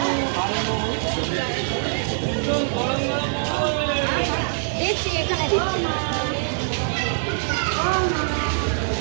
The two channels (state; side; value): silent; left; 63 dB below the other